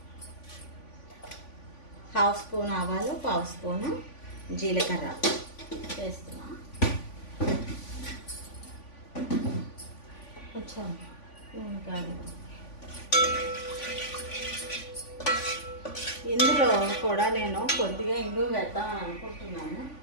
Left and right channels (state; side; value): late; right; 3.5 ms